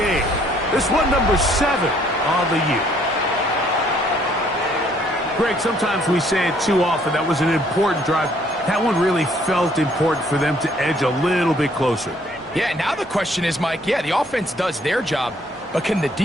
This one number 7 on the year. Greg, sometimes we say it too often. That was an important drive. That one really felt important for them to edge a little bit closer. Yeah, now the question is, Mike, yeah, the offense does their job, but can the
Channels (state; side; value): normal; both; correlation 0.64